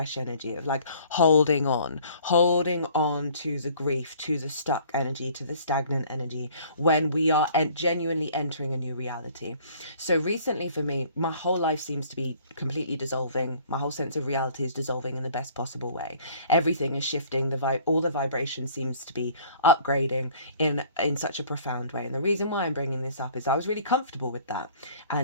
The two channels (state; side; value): inverted; both; correlation -0.53